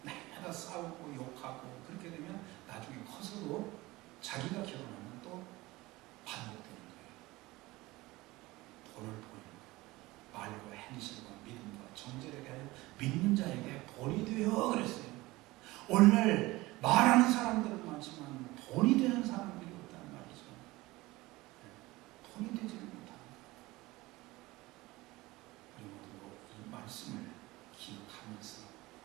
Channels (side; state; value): left; quieter; 20.1 dB